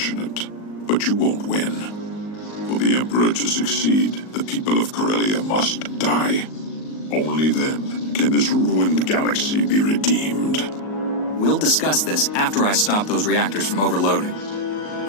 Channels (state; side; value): late; right; 38 ms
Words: but you won't win. For the Emperor to succeed, the people of Corellia must die. Only then can this ruined galaxy be redeemed. We'll discuss this after I stop those reactors from overloading.